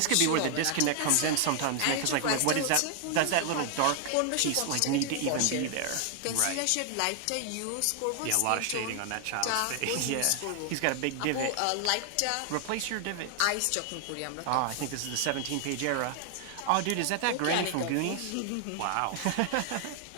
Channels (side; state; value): both; different; correlation 0.00